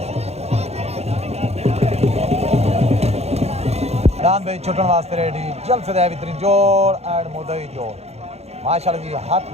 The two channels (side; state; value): left; late; 0.31 ms